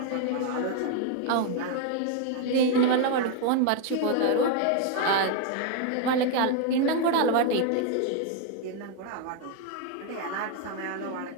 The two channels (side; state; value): both; different; correlation 0.01